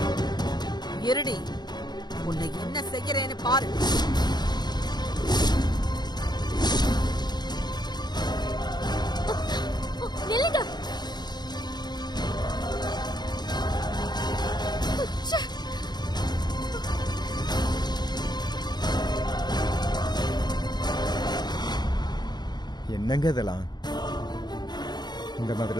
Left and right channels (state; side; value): late; right; 0.20 ms